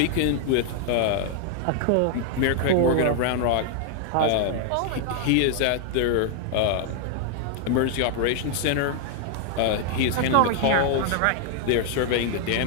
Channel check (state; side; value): different; both; correlation 0.00